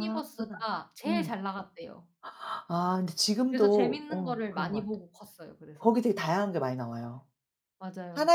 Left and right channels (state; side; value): identical; both; correlation 1.00